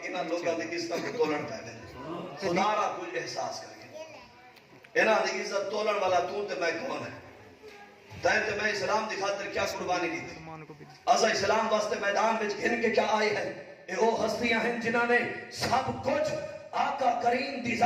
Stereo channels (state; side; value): identical; both; correlation 1.00